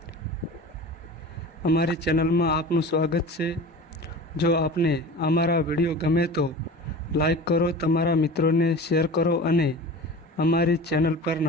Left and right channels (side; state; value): both; normal; correlation 0.35